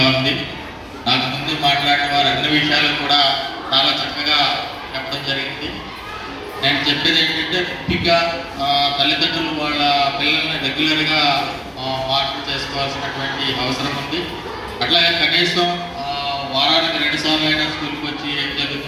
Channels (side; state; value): both; identical; correlation 1.00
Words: ఉంది. నాకు ముందు మాట్లాడిన వారు అన్ని విషయాలు కూడా చాలా చక్కగా చెప్పడం జరిగింది. నేను చెప్పేది ఏంటంటే, ముఖ్యంగా తల్లిదండ్రులు వాళ్ళ పిల్లల్ని రెగ్యులర్గా మానిటర్ చేసుకోవాల్సినటువంటి అవసరం ఉంది. అట్లాగే కనీసం వారానికి 2 సార్లు అయినా స్కూల్కి వచ్చి ఏం